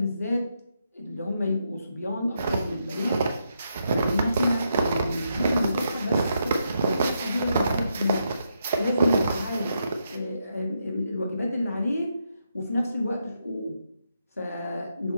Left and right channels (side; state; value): both; inverted; correlation -0.81